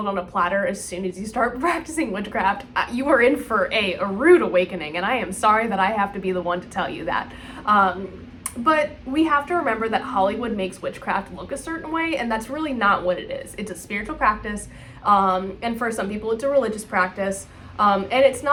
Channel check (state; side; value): identical; both; correlation 1.00